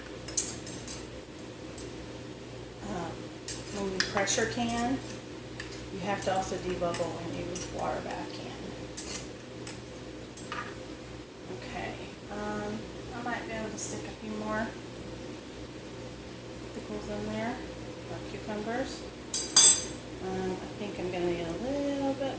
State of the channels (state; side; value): noise; left; rumble, 29 dB below the sound